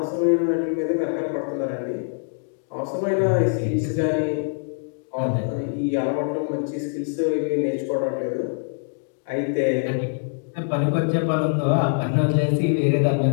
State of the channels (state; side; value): silent; right; digital silence